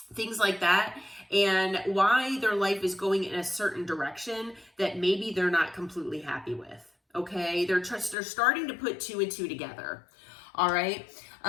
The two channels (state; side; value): drops out; right; at 8.2 s